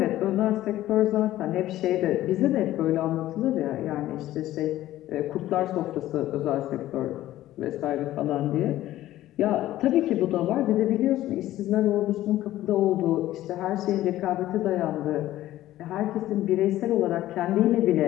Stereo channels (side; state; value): right; quieter; 14.5 dB